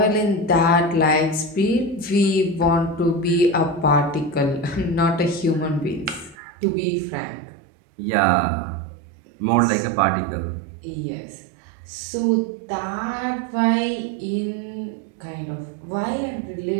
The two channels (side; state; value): left; drops out; at 6.4 s